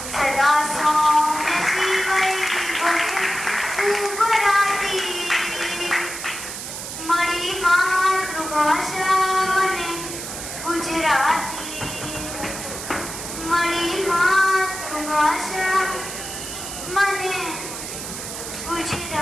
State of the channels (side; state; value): right; noise; hiss, 8 dB below the sound